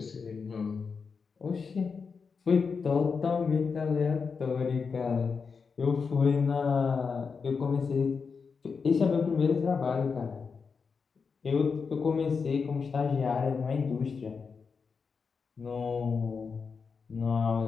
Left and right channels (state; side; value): quieter; right; 5.4 dB